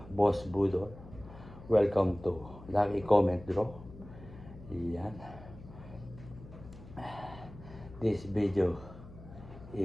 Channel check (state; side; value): noise; left; hum, 17 dB below the sound